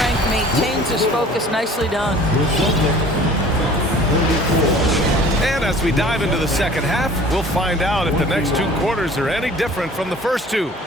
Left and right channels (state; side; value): normal; both; correlation 0.48